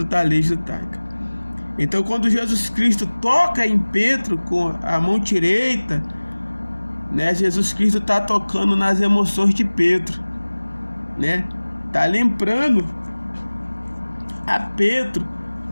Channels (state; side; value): inverted; both; correlation -1.00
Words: da lei judaica. Então, quando Jesus Cristo toca em Pedro com a mão direita, Jesus Cristo está tocando nas emoções de Pedro, está lembrando a Pedro